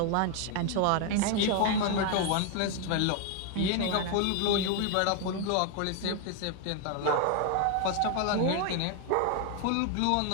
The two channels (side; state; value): both; different; correlation 0.01